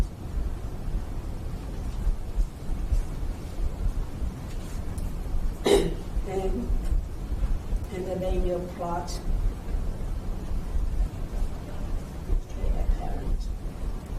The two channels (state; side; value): identical; both; correlation 1.00